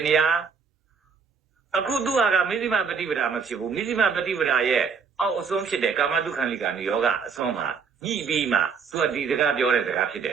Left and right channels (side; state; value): left; quieter; 5.9 dB